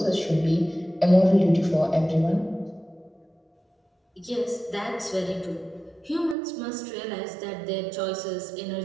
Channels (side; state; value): left; drops out; at 6.4 s